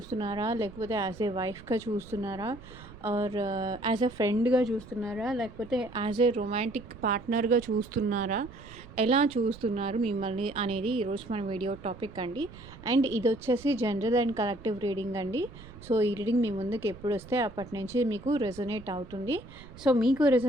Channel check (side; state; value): right; noise; rumble, 18 dB below the sound